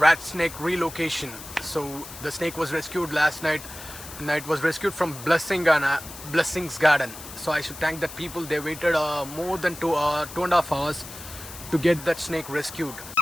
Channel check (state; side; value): noise; left; hiss, 14 dB below the sound